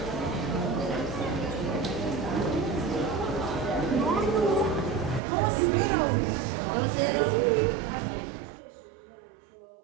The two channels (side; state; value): left; drops out; at 5.2 s